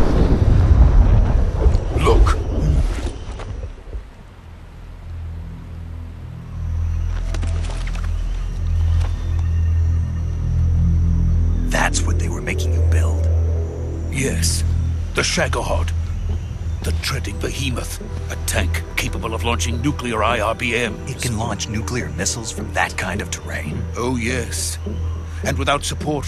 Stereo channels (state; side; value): identical; both; correlation 1.00